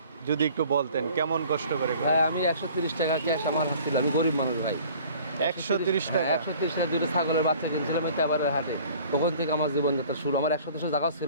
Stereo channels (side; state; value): both; inverted; correlation -0.50